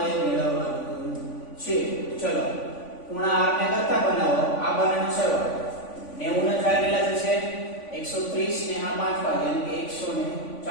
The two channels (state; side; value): late; right; 3.5 ms